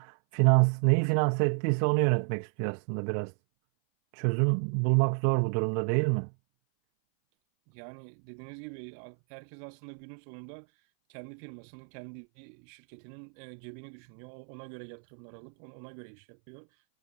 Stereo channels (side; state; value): left; silent; 58 dB below the other